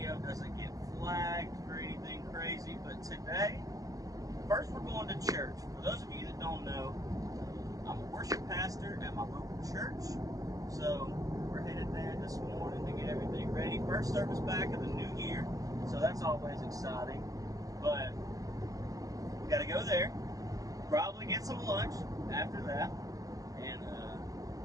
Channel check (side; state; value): left; late; 0.17 ms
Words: doesn't get flagged for anything crazy, but today, first we're going to church. For those of you that don't know, I'm a worship pastor at my local church, so we're headed there this morning to get everything ready. First service back of the new year, so that's always exciting, but we got to go there, probably get some lunch after that, and